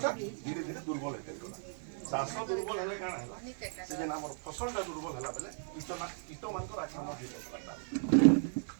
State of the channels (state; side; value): silent; left; 54 dB below the other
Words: धीरे धीरे दुर्बल होते गला चाष दुर्बल हेले काना हैला से जेना हमर फसलटा दुर्बल हैला बेले कीट मानकर आक्रमण होता